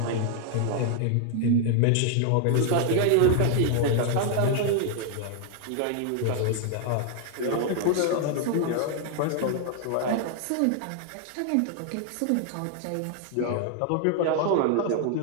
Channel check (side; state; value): both; different; correlation 0.00